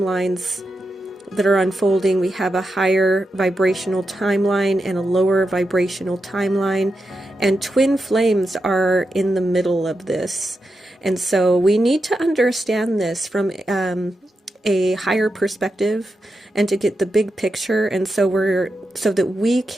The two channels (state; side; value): normal; both; correlation 0.88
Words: that are unfolding. We have a higher vibrational timeline and a lower vibrational timeline, and twin flames are in the middle of this. And so we need to understand this from a higher perspective and to get the big picture, and so that we